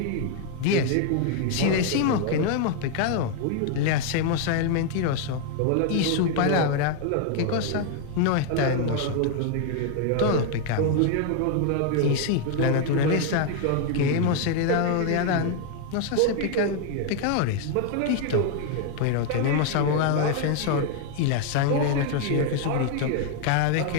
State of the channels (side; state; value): both; different; correlation 0.00